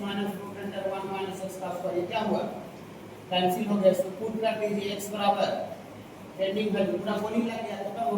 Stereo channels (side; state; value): both; identical; correlation 1.00